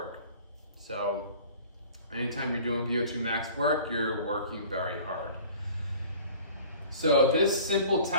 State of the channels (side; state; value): both; inverted; correlation -0.46